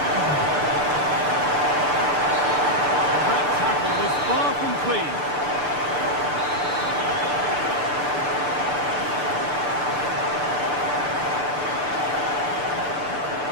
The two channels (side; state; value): left; late; 6.8 ms